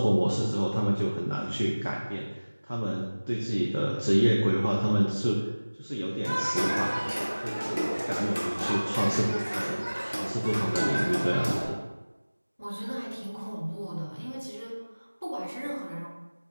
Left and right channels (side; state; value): both; inverted; correlation -1.00